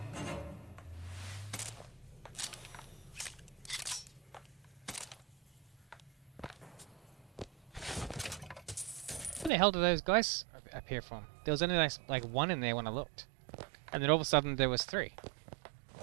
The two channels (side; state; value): left; drops out; at 9.5 s